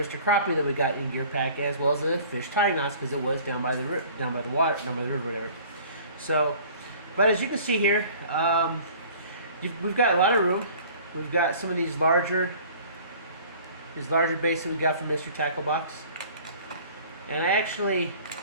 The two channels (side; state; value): both; inverted; correlation -0.48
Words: Crappie that we got in gear pack, as well as the fish tying knots because it was down by the river, whatever. So, but as you can see here, we've got a lot of room. We've got some of these larger baits that we got from Mr. Tackle Box, and